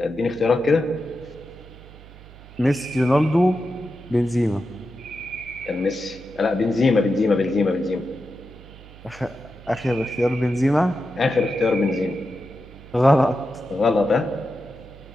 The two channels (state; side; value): noise; right; hum, 19 dB below the sound